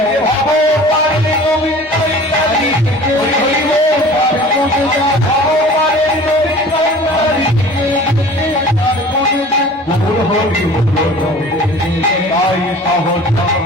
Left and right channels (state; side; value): normal; both; correlation 0.44